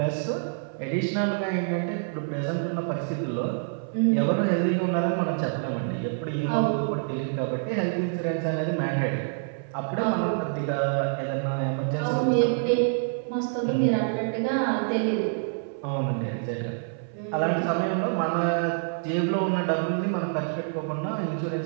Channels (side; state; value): left; silent; 60 dB below the other